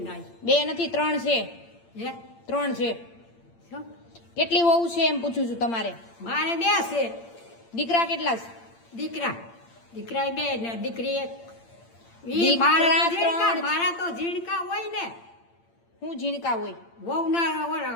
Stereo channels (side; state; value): right; late; 8.8 ms